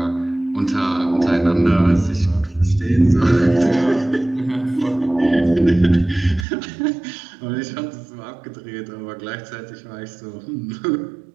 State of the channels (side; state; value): left; drops out; at 6.5 s